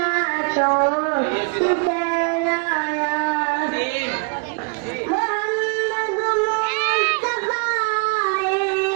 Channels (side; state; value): left; quieter; 35.7 dB